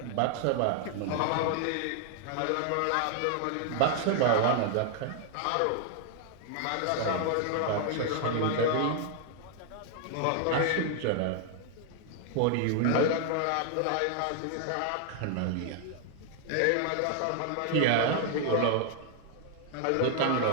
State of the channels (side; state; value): both; different; correlation 0.00